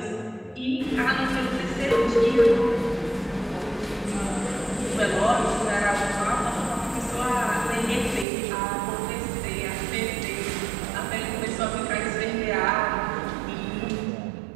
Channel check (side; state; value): left; drops out; at 8.2 s